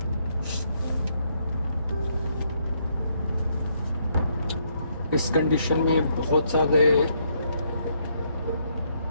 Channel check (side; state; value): both; inverted; correlation -0.73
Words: इस कंडीशन में बहुत सारे